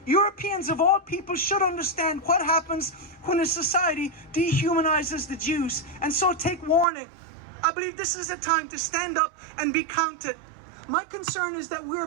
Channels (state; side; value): drops out; left; at 6.9 s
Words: Europeans of all people should understand what happens when a society dehumanizes the Jews, and so take warning. I believe this is a time to stand up and be counted. My concern is that we are